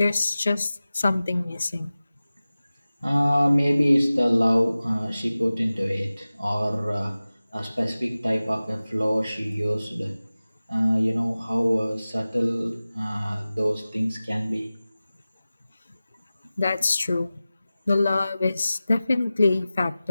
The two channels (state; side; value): inverted; both; correlation -0.97